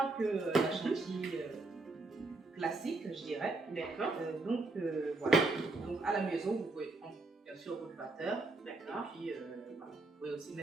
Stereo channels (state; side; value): quieter; left; 3.3 dB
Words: que la chantilly classique, je dirais. D'accord. Donc, voilà. Donc, à la maison, vous pouvez bien sûr votre batteur. D'accord. Et puis, voilà. Vous pouvez aussi